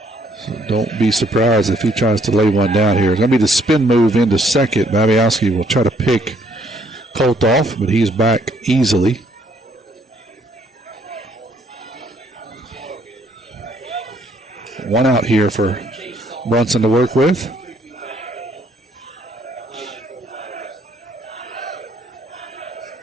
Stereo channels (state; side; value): normal; both; correlation 0.66